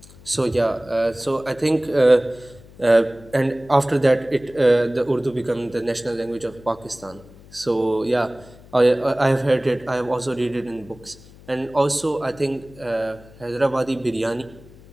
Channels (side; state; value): left; noise; hum, 22 dB below the sound